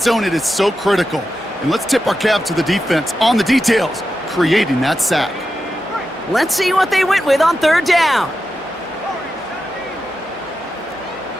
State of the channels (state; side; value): normal; both; correlation 0.90